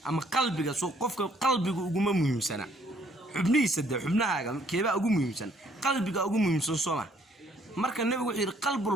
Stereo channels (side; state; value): both; normal; correlation 0.64